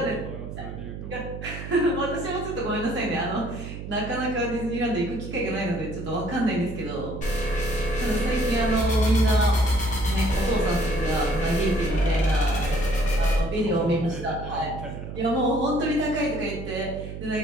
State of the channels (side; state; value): right; noise; hum, 9 dB below the sound